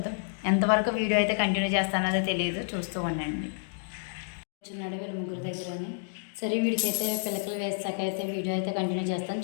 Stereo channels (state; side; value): silent; right; digital silence